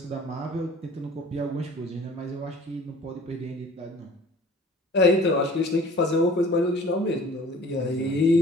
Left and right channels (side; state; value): both; normal; correlation 0.48